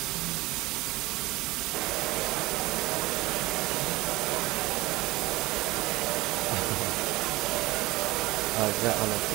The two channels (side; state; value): left; quieter; 20.0 dB